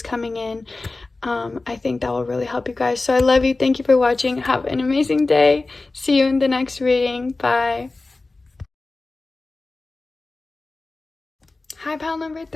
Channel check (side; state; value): right; quieter; 3.4 dB